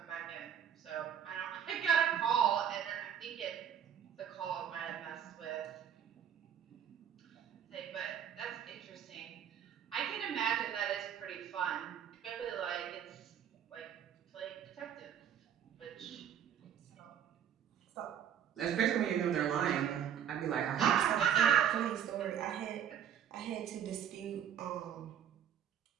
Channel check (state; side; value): quieter; left; 9.0 dB